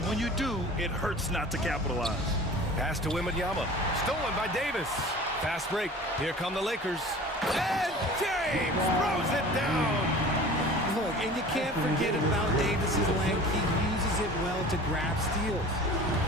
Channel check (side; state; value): both; normal; correlation 0.41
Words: when you do, it hurts not to capitalize. Pass to Wembanyama. Stolen by Davis. Fast break. Here come the Lakers. And James throws it down. Look, and you can't forget about Davis's length. He uses it well to grab steals.